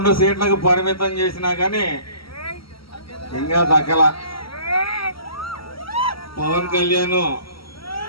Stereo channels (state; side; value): late; right; 0.75 ms